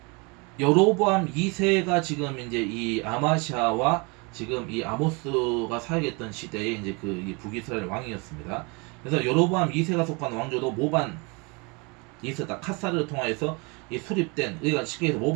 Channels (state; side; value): quieter; left; 29.7 dB